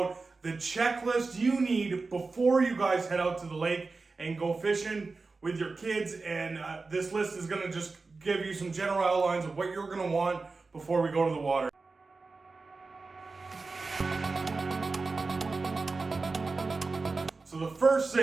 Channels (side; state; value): left; quieter; 3.9 dB